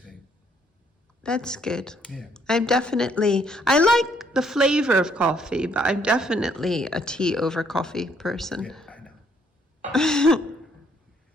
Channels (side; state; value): both; normal; correlation 0.68